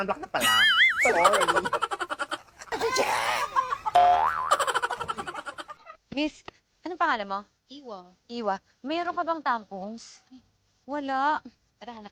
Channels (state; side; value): identical; both; correlation 1.00